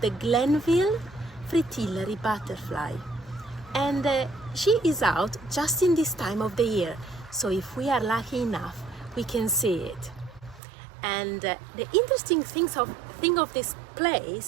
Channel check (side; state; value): left; drops out; at 10.6 s